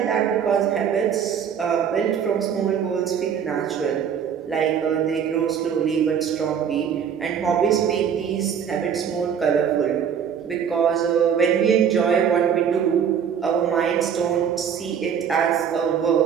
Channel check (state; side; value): quieter; left; 7.8 dB